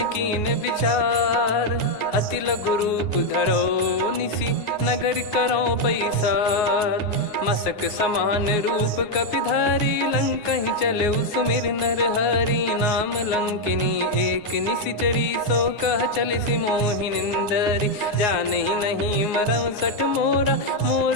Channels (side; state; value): right; late; 9.7 ms